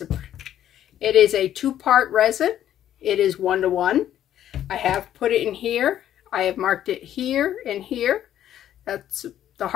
It is a 2-part resin. It is 1-to-1. I have put it in here. I have marked it here and here. That's the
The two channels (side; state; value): right; quieter; 11.3 dB